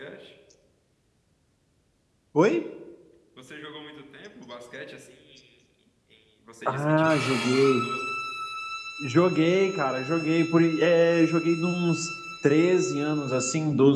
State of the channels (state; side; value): identical; both; correlation 1.00